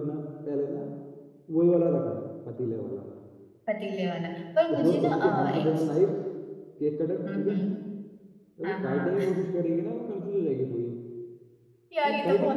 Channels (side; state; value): both; identical; correlation 1.00